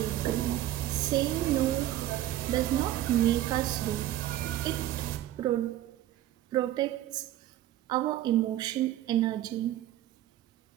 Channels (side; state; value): left; quieter; 13.5 dB